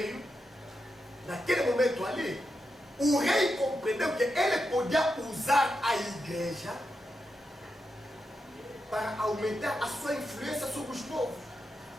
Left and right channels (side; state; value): both; normal; correlation 0.87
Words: naquele momento ali, o rei compreendeu que ele podia usar a igreja para aumentar a sua influência sobre os povos.